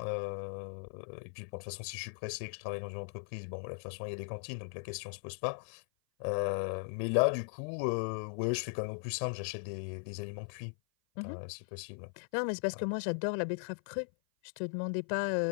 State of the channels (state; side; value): silent; right; 52 dB below the other